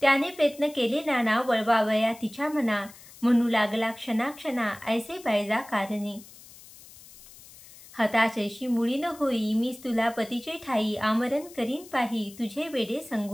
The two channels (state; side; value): noise; left; hiss, 20 dB below the sound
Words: त्याने प्रयत्न केले नाना, वळवावया तिच्या मना, म्हणू लागला क्षणाक्षणा ऐसे बायजा कारणे। हताशैशी मुळी न होई, मीच तुला पतीचे ठाई, आमरण करीन पाही तुझे वेडे